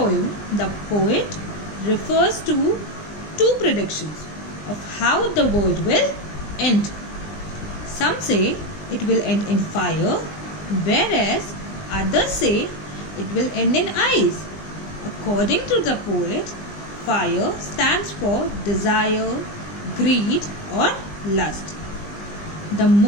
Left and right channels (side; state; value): right; late; 20 ms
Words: the poet refers to two predictions of how the world will end. Some say it will end in fire, whereas others say it will end in ice. According to the poet, fire stands for desire, greed, or lust. The